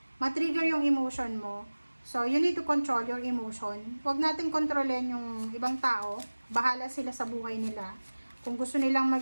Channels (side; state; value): both; inverted; correlation -1.00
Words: matrigger yung emotion mo. So, you need to control your emotion. Huwag natin kontrolin yung ibang tao. Bahala sila sa buhay nila. Kung gusto nilang